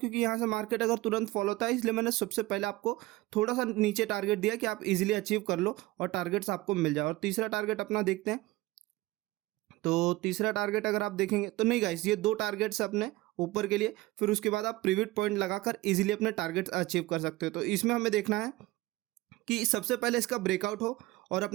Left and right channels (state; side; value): quieter; left; 19.4 dB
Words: यहाँ से मार्केट अगर तुरंत फॉलो होता है, इसलिए मैंने सबसे पहले आपको थोड़ा सा नीचे टारगेट दिया कि आप इजीली अचीव कर लो और टारगेट्स आपको मिल जाए। और तीसरा टारगेट अपना देखते हैं। तो तीसरा टारगेट अगर आप देखेंगे तो नहीं गाइस, ये 2 टारगेट्स अपने ऊपर के लिए, फिर उसके बाद आप प्रीविट पॉइंट लगाकर इजीली अपने टारगेट अचीव कर सकते हो। तो इसमें हमें देखना है कि सबसे पहले इसका ब्रेकआउट हो और